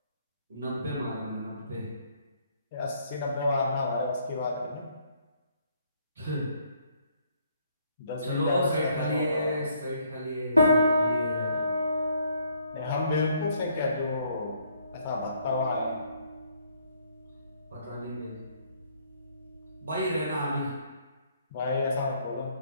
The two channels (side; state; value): both; inverted; correlation -0.67